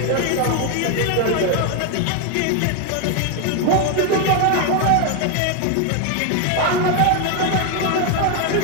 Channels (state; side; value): different; both; correlation 0.01